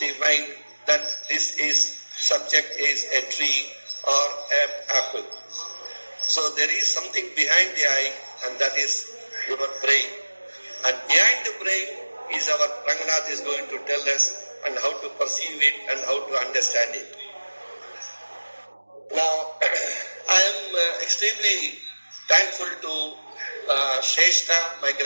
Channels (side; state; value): both; inverted; correlation -1.00